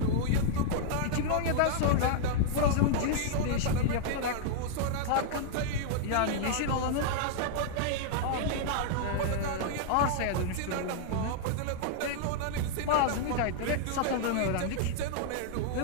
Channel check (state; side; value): different; both; correlation -0.01